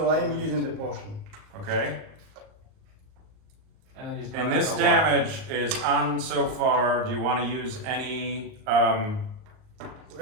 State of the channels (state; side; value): late; left; 38 ms